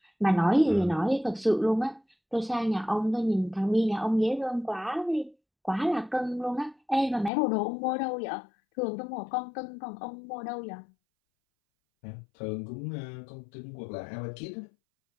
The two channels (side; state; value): right; drops out; at 7.3 s